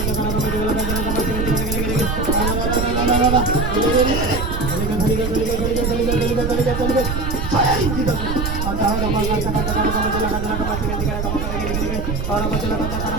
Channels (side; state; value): right; noise; rumble, 2 dB below the sound